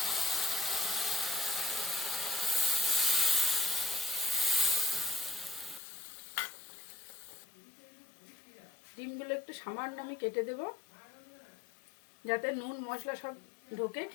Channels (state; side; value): drops out; right; at 5.8 s